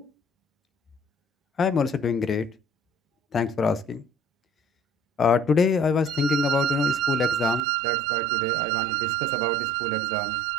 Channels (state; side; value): drops out; left; at 7.6 s